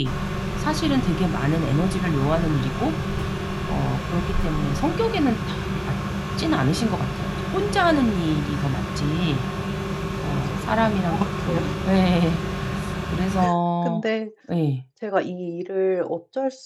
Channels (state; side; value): identical; both; correlation 1.00